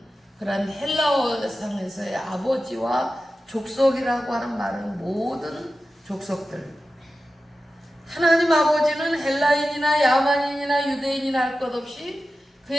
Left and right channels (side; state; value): both; normal; correlation 0.93